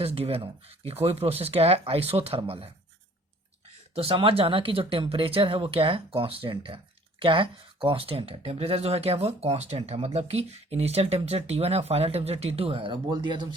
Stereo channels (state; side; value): normal; both; correlation 0.54